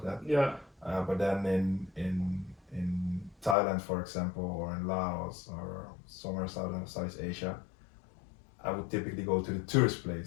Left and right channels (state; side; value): drops out; right; at 3.6 s